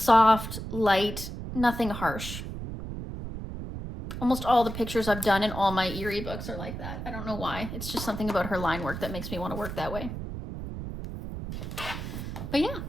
light, nothing harsh. Almost all the pictures I've done in all my Eerie books are like that. I don't know why. It's just something about her line work that makes me want to work that way. But yeah,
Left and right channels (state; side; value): noise; right; rumble, 7 dB below the sound